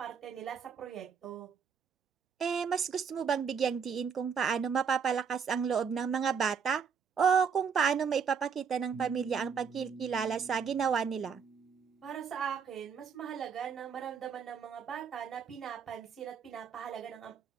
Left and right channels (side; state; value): left; quieter; 6.5 dB